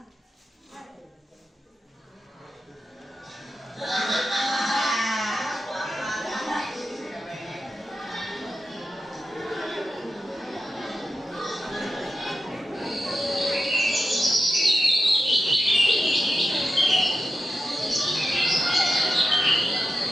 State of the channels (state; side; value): normal; both; correlation 0.91